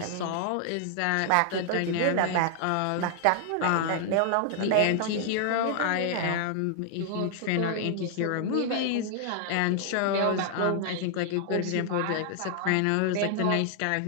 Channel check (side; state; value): both; different; correlation 0.00